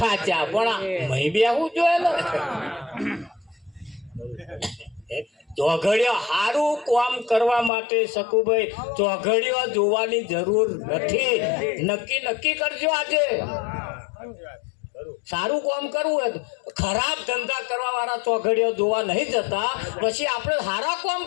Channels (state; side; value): drops out; right; at 7.7 s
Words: પણ મહી બેહવું જોઈએ ને ચોઘડિયો સારું કામ કરવા માટે શકુભાઈ ચોઘડિયો જોવાની જરૂર નથી નક્કી કરજો આજે સારું કામ કરવું હોય ખરાબ ધંધા કરવા વાળા ચોઘડિયો જોવા નહીં જતા પછી આપણે સારા કામ